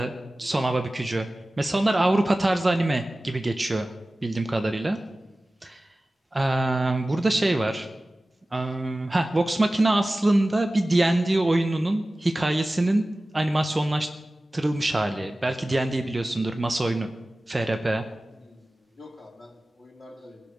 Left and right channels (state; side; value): normal; both; correlation 0.97